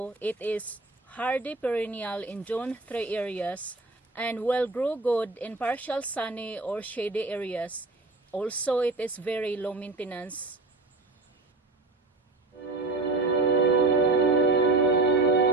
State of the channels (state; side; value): quieter; left; 3.3 dB